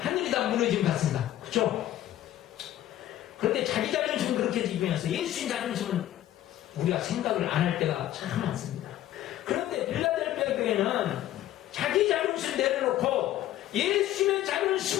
다 무너짐 같습니다. 그렇죠? 그런데 자기 자존심은 그렇게 지키면서 예수님 자존심은 우리가 생각을 안 할 때가 참 많습니다. 그런데 필라델피아 교회는 자기 자존심 내려놓고 예수님의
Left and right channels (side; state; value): right; quieter; 13.3 dB